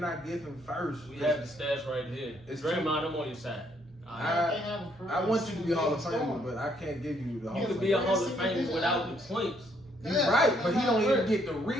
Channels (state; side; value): normal; both; correlation 0.69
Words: give him 1st. We have the stats right here. Draymond, I'm on your side. I want you to be Hall of Famer, but I can't give you the Hall of Famer. You can be a Hall of Famer without the points. You're right, but he don't even get the